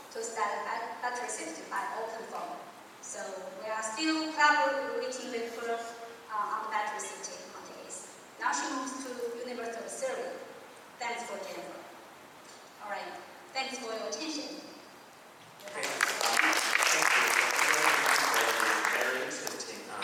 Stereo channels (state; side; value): identical; both; correlation 1.00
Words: to study battery safety by OpenFOAM. So we are still collaborating with her on battery safety nowadays. Now she moves to University of Surrey. Thanks for Jennifer. All right. Thanks for your attention. Okay. Thank you for the very interesting